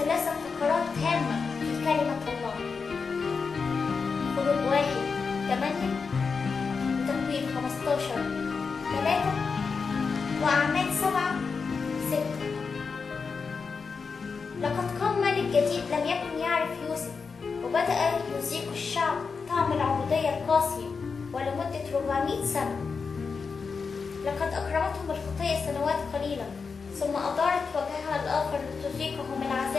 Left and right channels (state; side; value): quieter; right; 5.1 dB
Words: فقرات هامة في كلمة الله. خروج 1:8، وتكوين 15:3، وأعمال 7:6. لقد قام ملك جديد لم يكن يعرف يوسف، وبدأ يذيق الشعب طعم العبودية القاسية ولمدة 400 سنة. لقد أكرمتهم الخطية سنوات قليلة، ثم أدارت وجهها الآخر لتذيقهم